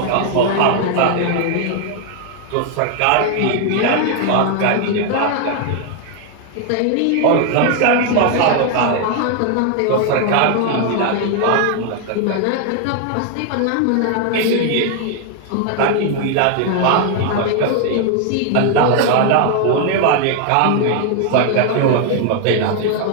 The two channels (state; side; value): different; both; correlation 0.00